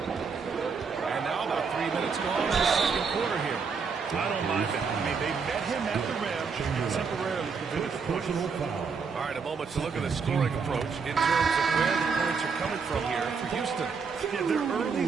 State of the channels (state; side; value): quieter; left; 5.5 dB